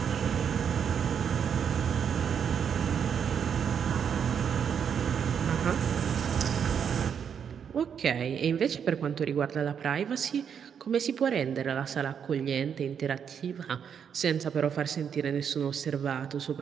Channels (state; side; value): quieter; left; 7.6 dB